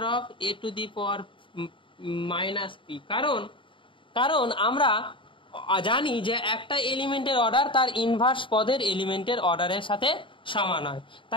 of a to the power minus p, কারণ আমরা জানি যে একটা এলিমেন্টের অর্ডার তার ইনভার্স পদের এলিমেন্টের অর্ডারের সাথে সমান হয়।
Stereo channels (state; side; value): late; right; 0.25 ms